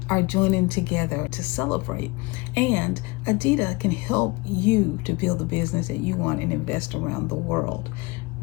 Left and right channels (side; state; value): right; quieter; 25.3 dB